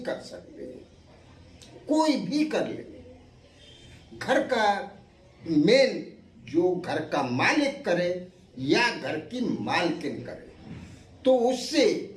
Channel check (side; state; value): both; identical; correlation 1.00